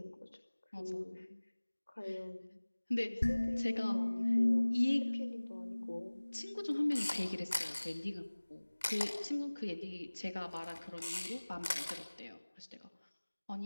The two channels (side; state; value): both; inverted; correlation -1.00